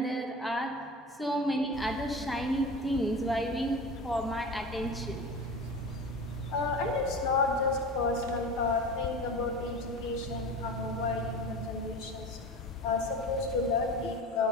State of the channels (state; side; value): normal; both; correlation 0.32